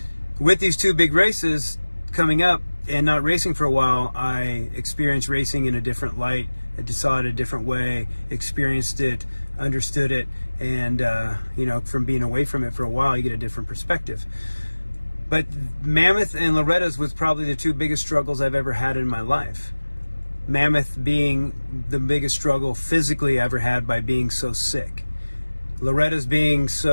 with these two big races coming up and not racing for a while, I experienced racing in a different light. I saw it a different way, experienced it, understood it, and from being away from it for a while, you get a different perspective. But Mammoth and Loretta's was probably the two biggest struggles I've ever had in my life. Mammoth being the biggest struggle physically I ever had by being so sick. Loretta's being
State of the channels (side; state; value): both; inverted; correlation -1.00